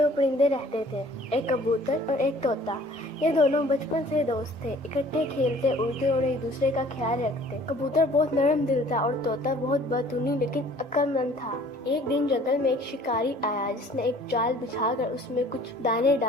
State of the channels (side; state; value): both; normal; correlation 0.53